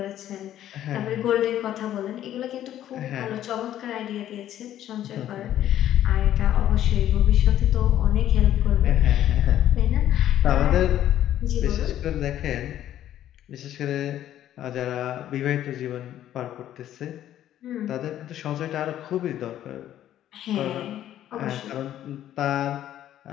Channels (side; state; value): right; quieter; 11.9 dB